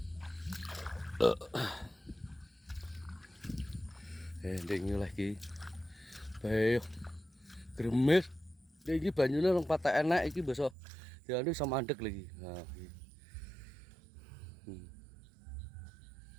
Ndek lagi. Bae. Gremes. Iki banyune rong patek enak iki besok dianu iso mandeg lagi. Nah, iki.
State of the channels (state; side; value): drops out; left; at 10.8 s